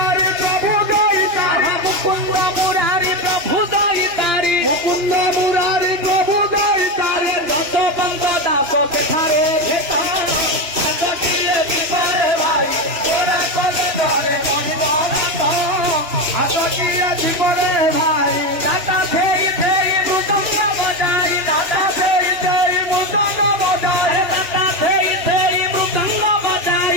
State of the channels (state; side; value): late; left; 3.0 ms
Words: ପ୍ରଭୁ ଦଇତାରି মুকুন্দ মুরারি প্রভু দয়িতারি ମୁକୁନ୍ଦ ମୁରାରି ପ୍ରଭୁ ଦଇତାରି যত বন্ধ দাস সেখানে ভেতর দিয়ে বিপরে ভাই ওরা কলে ধরে মনিব ଆସକିଏ ଜୀବନରେ ଭାଇ দাদা ফেই ফেই মৃদঙ্গ বজাই দাদা ସେଇ ସେଇ ମୃଦଙ୍ଗ ବଜାଇ দাদা ফেই ফেই মৃদঙ্গ